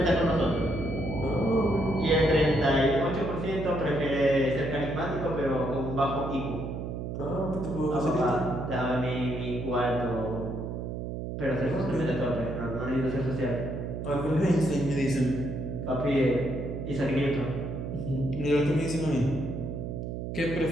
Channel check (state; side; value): noise; right; hum, 5 dB below the sound